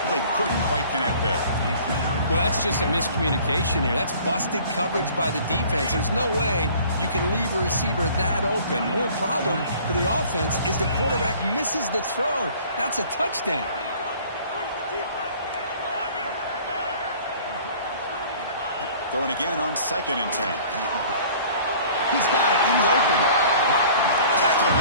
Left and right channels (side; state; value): both; inverted; correlation -0.50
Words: Couldn't quite connect there. Well, that's just a miscommunication here. That's busted coverage by the defense. There's no way you can leave a receiver that open. The only problem for the offense is the quarterback misses the throw. That's a touchdown. Throwing again on 2nd and 10. He's got it in the open. Tackle